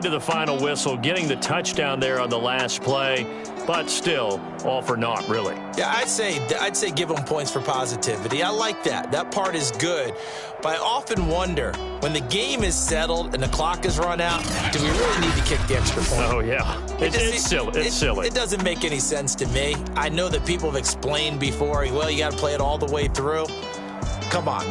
to the final whistle, getting the touchdown there on the last play, but still, all for naught, really. Yeah, I'd say give them points for positivity. I like that. That part is good. But I often wonder, when the game is settled and the clock is run out, do we really need to kick the extra point? Oh, yeah. It's silly. It doesn't make any sense to me. I know that people have explained before, well, you got to play it all the way through. Come on,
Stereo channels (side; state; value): both; identical; correlation 1.00